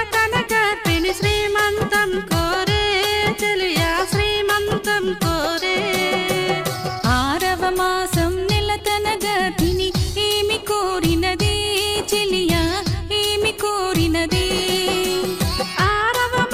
గర్భిణి శ్రీమంతం కోరే చెలియా శ్రీమంతం కోరే ఆరవ మాసం నెలతన గర్భిణి ఏమి కోరినదే చెలియా ఏమి కోరినదే ఆరవ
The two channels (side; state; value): both; identical; correlation 1.00